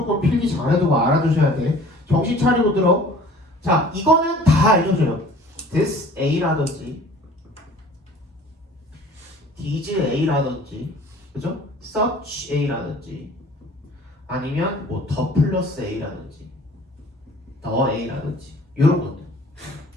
필기 잘해두고 알아두셔야 돼. 정신 차리고 들어. 자, 이거는 다 알려줘요. this A라든지 these A라든지 그죠? such A라든지 아니면 뭐 더 플러스 A라든지 더 A라든지 이런 것들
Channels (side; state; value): both; normal; correlation 0.49